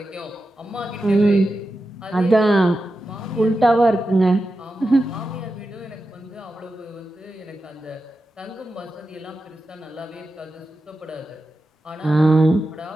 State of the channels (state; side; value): normal; both; correlation 0.91